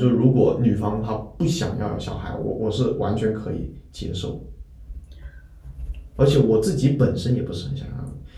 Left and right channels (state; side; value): identical; both; correlation 1.00